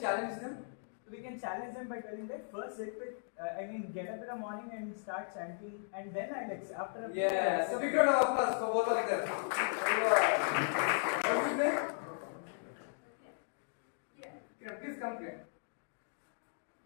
them? We can challenge them by telling that first sit with, get up in the morning and start chanting, and then after a Yeah, so big round of applause for both of them. What's his name? Please come here.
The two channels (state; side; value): silent; right; digital silence